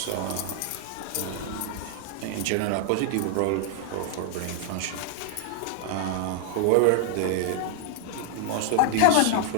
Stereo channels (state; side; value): different; both; correlation 0.00